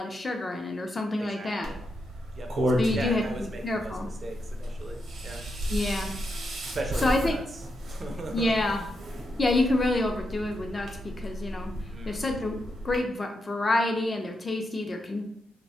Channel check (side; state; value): both; normal; correlation 0.84